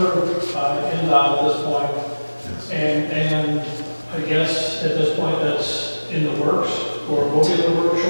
by Endowment at this point. And I guess at this point that's in the works, or will be in the works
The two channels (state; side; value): inverted; both; correlation -1.00